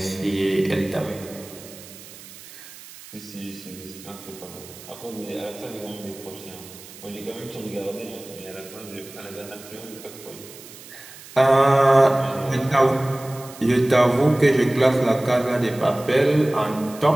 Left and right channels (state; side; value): noise; right; hiss, 18 dB below the sound